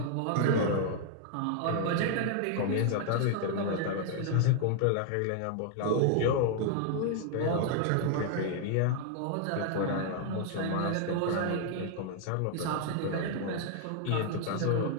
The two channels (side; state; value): both; different; correlation 0.00